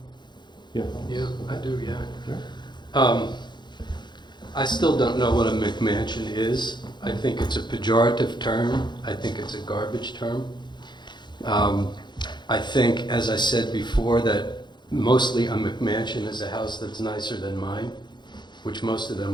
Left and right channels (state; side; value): late; right; 0.21 ms